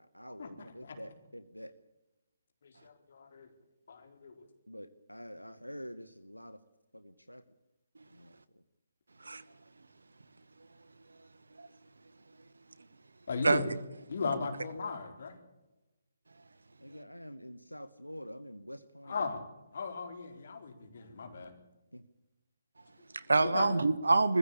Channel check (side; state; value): both; inverted; correlation -0.90